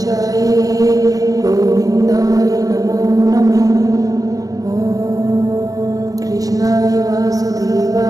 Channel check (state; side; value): late; left; 0.17 ms